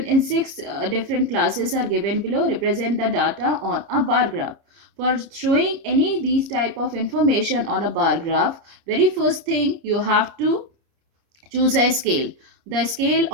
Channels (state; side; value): late; left; 30 ms